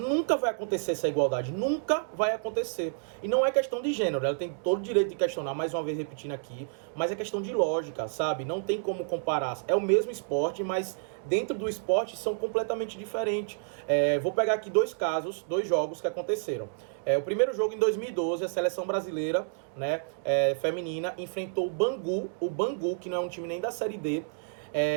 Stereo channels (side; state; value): left; silent; digital silence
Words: vai acontecer essa igualdade. Nunca vai acontecer. E não é questão de gênero. Ela tem todo o direito de questionar, mais uma vez repetindo aqui, mas é questão de lógica, sabe? Não tem como comparar. É o mesmo esporte, mas dentro do esporte são completamente diferentes. Vou pegar aqui dois jogos que aconteceram. O primeiro jogo em 2012, a seleção brasileira, né, feminina, enfrentou o Bangu, que não é um time nem da Série D,